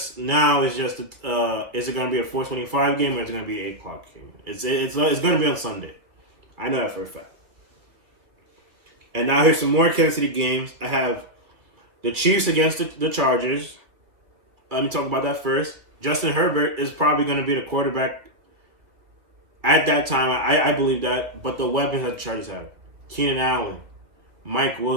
it gonna be a 4:25 game or is it gonna be an 8 o'clock game? It's gonna be on Sunday. I know that for a fact. And now here's some more Kansas City games. I have the Chiefs against the Chargers. Let me talk about that first. Justin Herbert is probably going to be the quarterback at that time. I believe that. But the weapons that the Chargers have. Keenan Allen, Mike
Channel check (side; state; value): left; late; 2.7 ms